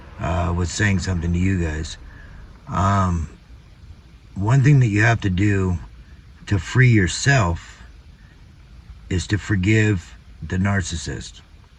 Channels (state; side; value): identical; both; correlation 1.00